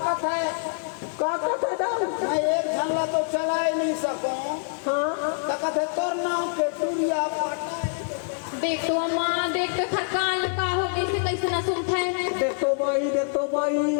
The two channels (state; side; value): silent; right; 61 dB below the other